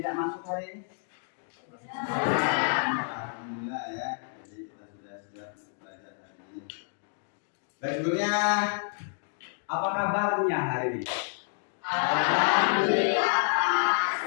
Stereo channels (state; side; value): silent; right; digital silence